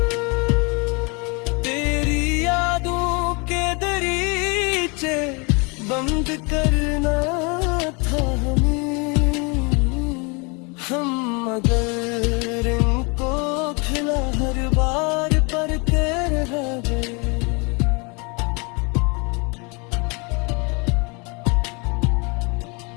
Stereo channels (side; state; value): right; quieter; 31.0 dB